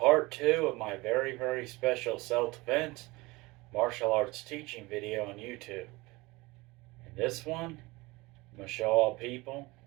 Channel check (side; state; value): left; quieter; 22.4 dB